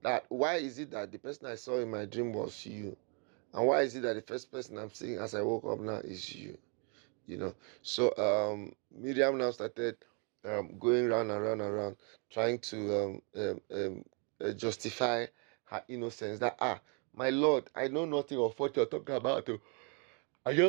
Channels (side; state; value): left; quieter; 37.4 dB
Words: That why is it that the person I saw in my dream was you, and why is it that the first person I'm seeing as I woke up now is you? So Miriam now started going round and round and round, trying to justify her innocence. That my lord, I know nothing of what you're talking about. Oh. I